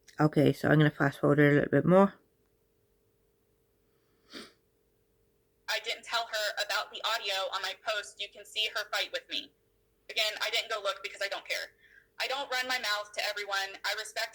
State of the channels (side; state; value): both; identical; correlation 1.00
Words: Okay, so I'm going to fast forward a little bit more. I didn't tell her about the audio on my post. You can see her fight with me. Again, I didn't go look because I don't care. I don't run my mouth to everyone. I respect